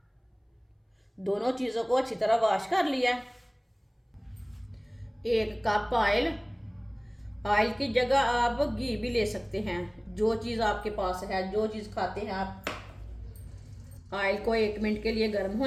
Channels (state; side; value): identical; both; correlation 1.00